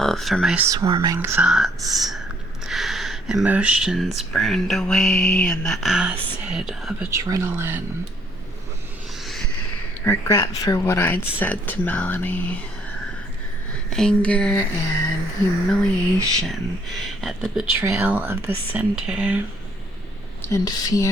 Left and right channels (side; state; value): both; normal; correlation 0.65